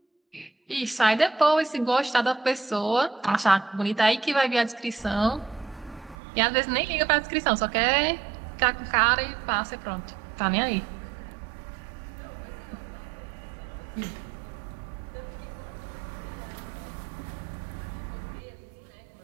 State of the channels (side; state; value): left; drops out; at 6.2 s